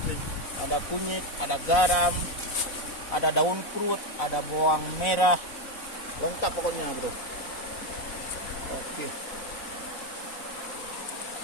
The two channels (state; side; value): late; right; 4.0 ms